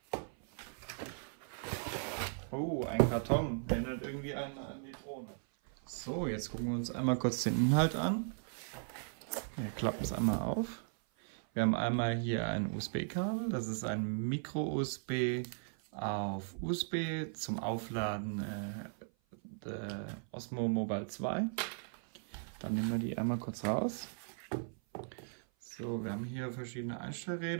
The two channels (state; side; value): silent; left; 53 dB below the other